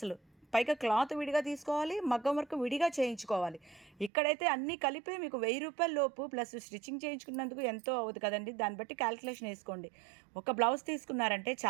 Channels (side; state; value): left; drops out; at 4.1 s